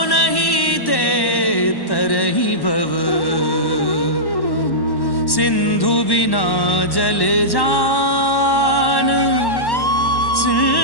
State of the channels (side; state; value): right; late; 1.1 ms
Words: ते तरहि भव सिंधु बिना जल जान